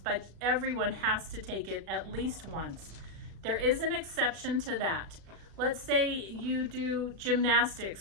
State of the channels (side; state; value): left; late; 36 ms